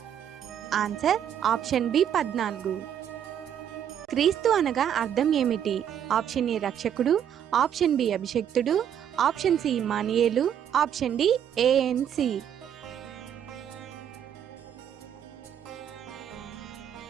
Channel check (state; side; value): quieter; left; 9.3 dB